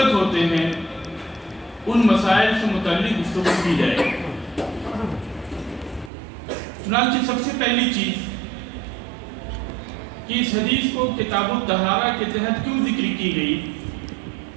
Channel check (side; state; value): left; drops out; at 6.1 s